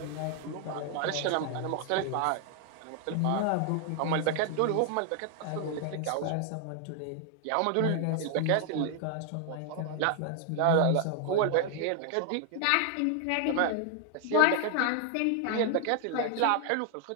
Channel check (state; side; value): different; both; correlation 0.00